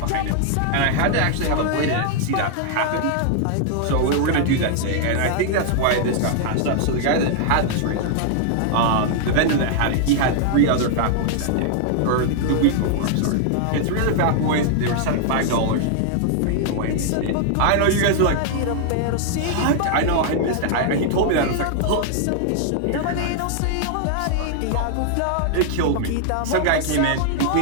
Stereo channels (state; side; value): different; both; correlation 0.00